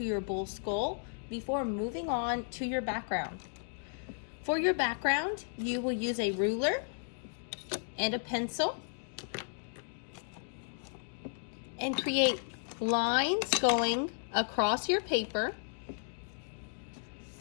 your bull skull before moving on to your background. For your background, you will use a ruler and a pencil and create lines going across your paper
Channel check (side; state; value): right; silent; digital silence